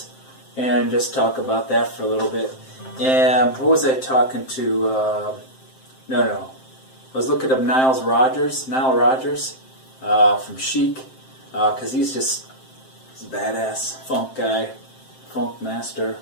and just talk about that for a little bit. And what was I talking to? I was looking up Nile Rodgers from Chic, because he's a badass funk guy, funk master,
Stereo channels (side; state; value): right; late; 7.6 ms